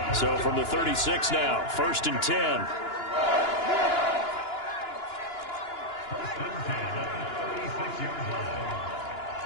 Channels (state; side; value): late; right; 2.9 ms